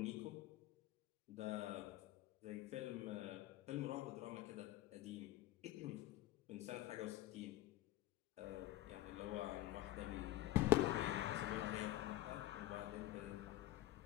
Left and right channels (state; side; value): quieter; right; 15.8 dB